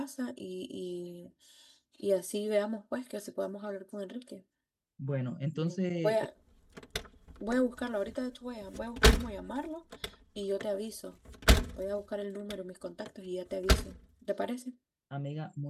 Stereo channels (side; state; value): both; identical; correlation 1.00